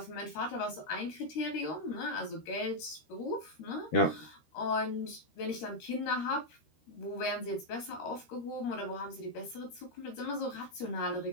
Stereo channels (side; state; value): right; late; 13 ms